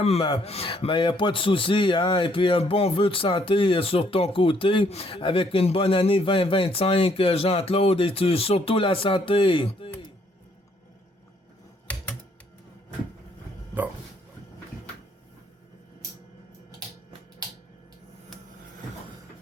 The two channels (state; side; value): normal; both; correlation 0.67